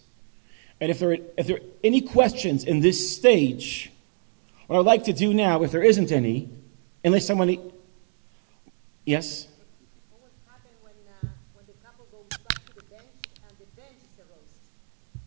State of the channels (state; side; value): silent; left; 59 dB below the other